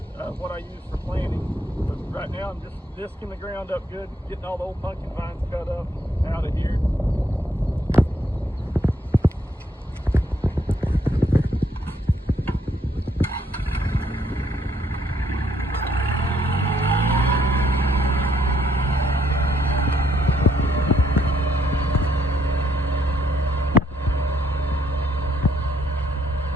what I use for planting. But right now I'm just disking the ground up good, getting all the old pumpkin vines cut up out of here.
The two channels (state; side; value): normal; both; correlation 0.71